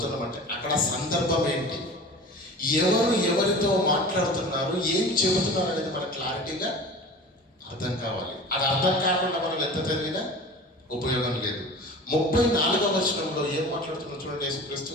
అక్కడ సందర్భం ఏంటి, ఎవరితో మాట్లాడుతున్నారు, ఏం చెబుతున్నారు అనేది మనకు క్లారిటీగా అర్థం కావాలి. అది అర్థం కాకుండా మనం ఎంత చదివినా ఉపయోగం లేదు. 34వ వచనంలో ఏం మాట్లాడుతున్నారు చూడండి. యేసుక్రీస్తు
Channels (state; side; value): normal; both; correlation 0.38